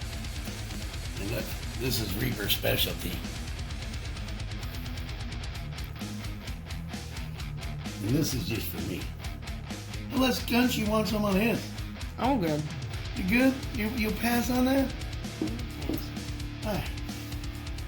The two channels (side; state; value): both; identical; correlation 1.00